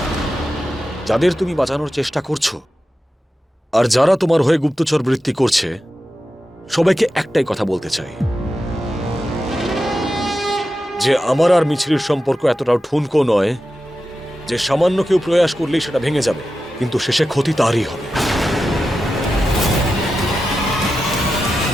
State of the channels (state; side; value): normal; both; correlation 0.91